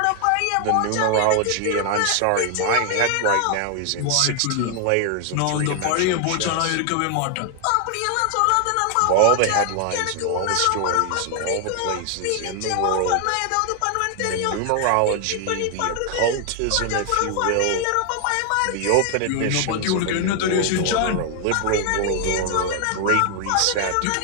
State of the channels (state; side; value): different; both; correlation 0.00